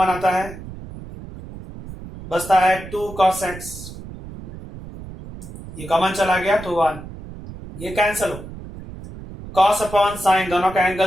आता है, बचता है 2 cos x, ये कॉमन चला गया तो 1, ये कैंसल हो। cos अपॉन sin दोनों का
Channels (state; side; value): noise; right; rumble, 13 dB below the sound